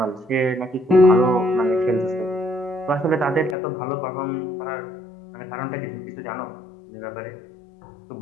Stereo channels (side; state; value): right; drops out; at 3.6 s